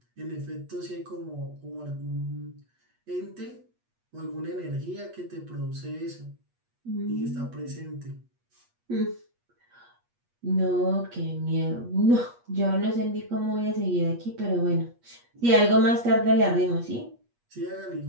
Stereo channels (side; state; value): left; late; 8.4 ms